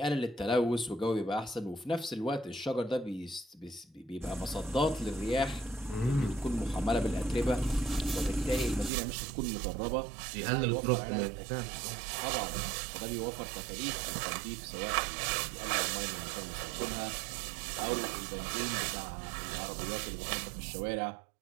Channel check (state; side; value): drops out; left; at 8.9 s